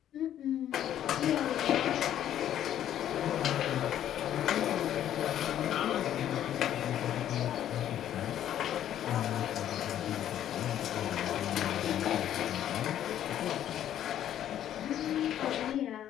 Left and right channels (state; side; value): quieter; right; 11.1 dB